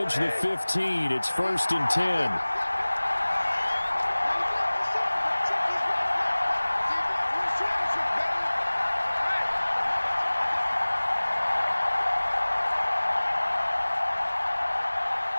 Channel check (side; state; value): both; inverted; correlation -1.00